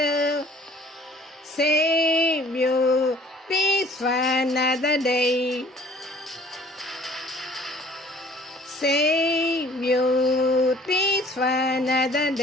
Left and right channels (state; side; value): normal; both; correlation 0.54